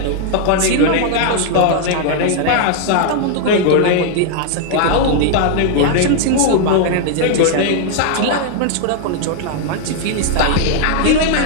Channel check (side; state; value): both; different; correlation 0.00